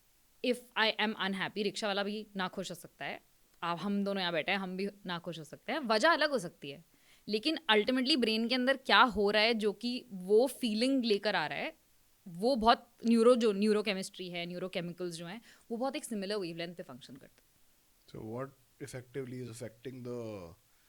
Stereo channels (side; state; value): both; identical; correlation 1.00